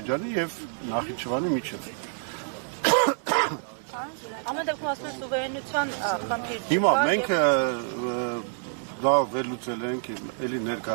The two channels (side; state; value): left; silent; 60 dB below the other